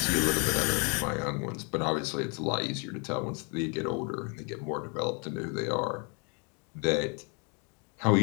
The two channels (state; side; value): quieter; right; 34.9 dB